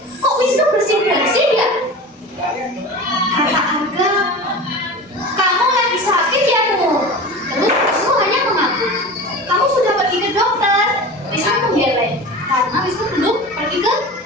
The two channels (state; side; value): normal; both; correlation 0.32